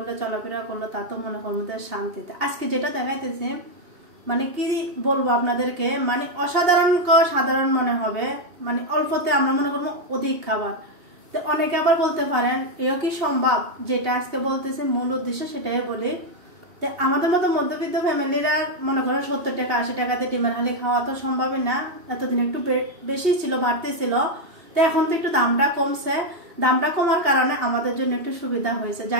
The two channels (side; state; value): left; late; 2.8 ms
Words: চলাফেরা করলে, তা তো মনে করবো শান্তিতে। আজকে যেটা দেখাইতেছি, মানে কি বলবো আপনাদেরকে, মানে অসাধারণ সাধারণ মনে হবে, মানে অল্পতে আমরা মনে করবো অধিক খাবার। তো অনেকে আবার বলতে পারেন এও কি সম্ভব, যেটা আজকে বলতেছে মূল উদ্দেশ্য সেটাই বলি। তো আমাদের মতো মধ্যবিত্ত ফ্যামিলিরা মনে করেন 70 টাকা 80 টাকাতে ডিমের হালি খাওয়া তো সম্ভবই না। এতদিন একটু বেশি ছিল, বাড়তি ছিল। তো এখন তো একটু দামটা কমছে, দামটা কমার কারণে আমাদের জন্য একটু সুবিধা হয়েছে।